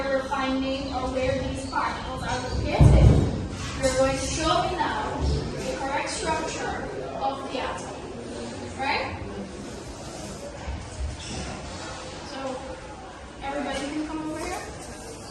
we're finding or where these particles are located, you're going to show me now the correct structure of the atom. Right? So, everybody can come over here.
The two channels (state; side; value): identical; both; correlation 1.00